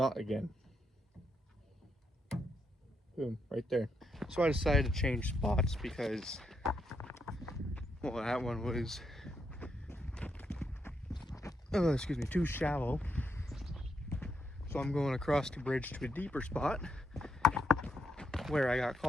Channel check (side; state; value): both; normal; correlation 0.79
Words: again. Boom, right there. So I decided to change spots because, well, that one was, too shallow. So I'm going across the bridge to a deeper spot where I got